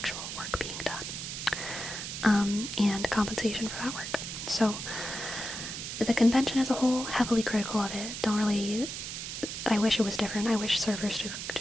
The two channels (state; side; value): noise; right; hiss, 6 dB below the sound